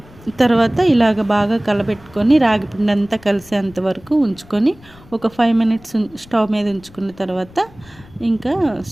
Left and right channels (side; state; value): left; noise; rumble, 24 dB below the sound